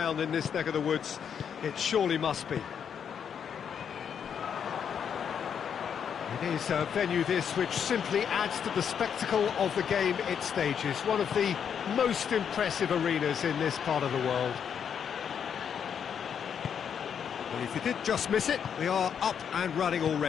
in this neck of the woods. It surely must be. It is a venue this which simply adds to the spectacle of the game it stages. One of the most impressive arenas in this part of the world. Well, if you did just miss it, we are up and running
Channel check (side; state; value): right; quieter; 7.8 dB